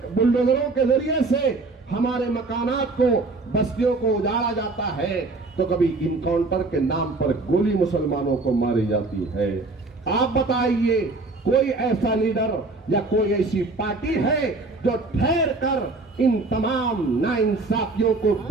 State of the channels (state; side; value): quieter; left; 3.5 dB